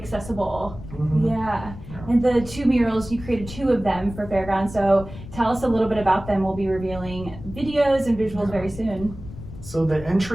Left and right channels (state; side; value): noise; left; rumble, 13 dB below the sound